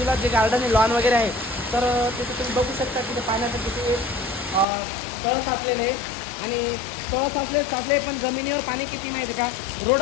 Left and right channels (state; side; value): drops out; right; at 4.7 s